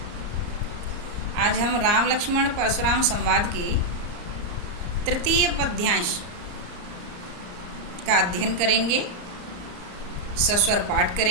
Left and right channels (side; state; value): left; late; 34 ms